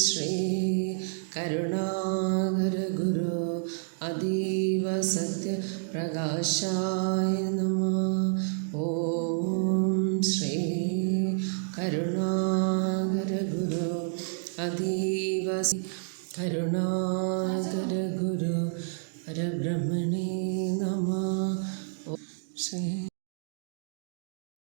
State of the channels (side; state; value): left; silent; digital silence